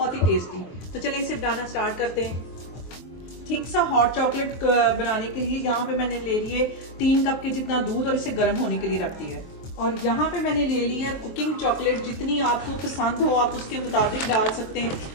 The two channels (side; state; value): right; late; 23 ms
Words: ही टेस्टी। तो चलिए इसे बनाना स्टार्ट करते हैं। ठीक सा हॉट चॉकलेट बनाने के लिए यहाँ पे मैंने ले लिए 3 कप के जितना दूध और इसे गर्म होने के लिए रख दिया है। और यहाँ पे मैंने ले लिया कुकिंग चॉकलेट, जितनी आपको पसंद हो आप उसके मुताबिक डाल सकते हैं।